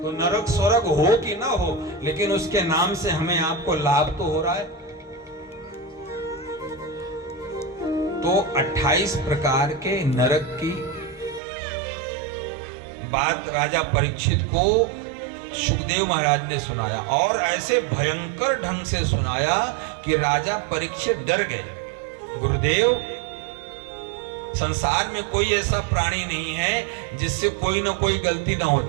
तो नरक स्वर्ग हो कि ना हो, लेकिन उसके नाम से हमें आपको लाभ तो हो रहा है। तो 28 प्रकार के नरक की बात राजा परीक्षित को सुखदेव महाराज ने सुनाया, और ऐसे भयंकर ढंग से सुनाया कि राजा परीक्षित डर गए। गुरुदेव, संसार में कोई ऐसा प्राणी नहीं है जिससे कोई ना कोई गलती ना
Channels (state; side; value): drops out; left; at 11.4 s